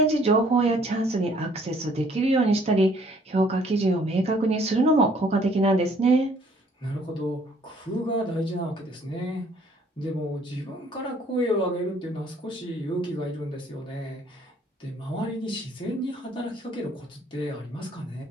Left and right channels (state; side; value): normal; both; correlation 0.60